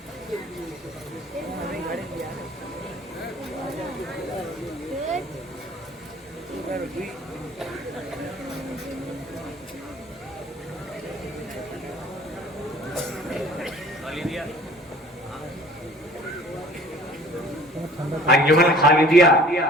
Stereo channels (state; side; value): normal; both; correlation 0.50